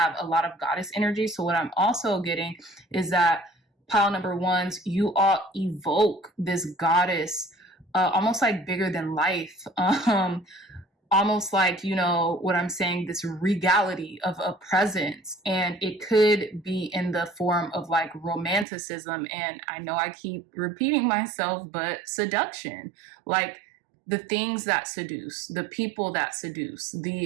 a lot of goddess energy. So what I'm also getting is that pile number 1s, you all evoke this goddess, almost like bigger than life. Almost like, you know what I'm saying, this regality of a presence. And it could be in the form of like romanticism. And I know I keep repeating myself, but seduction, like the things that seduce, the people that seduce,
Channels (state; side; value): drops out; left; at 18.7 s